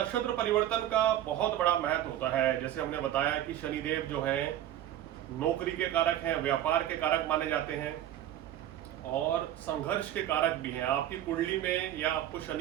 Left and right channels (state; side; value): quieter; left; 12.2 dB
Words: परिवर्तन का बहुत बड़ा महत्व होता है। जैसे हमने बताया कि शनिदेव जो है नौकरी के कारक हैं, व्यापार के कारक माने जाते हैं और संघर्ष के कारक भी हैं। आपकी कुंडली में या आपको